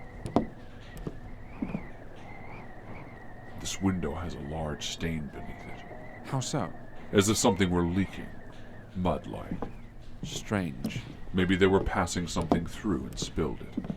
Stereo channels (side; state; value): both; identical; correlation 1.00